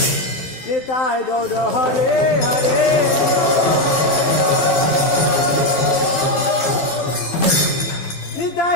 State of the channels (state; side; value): late; right; 12 ms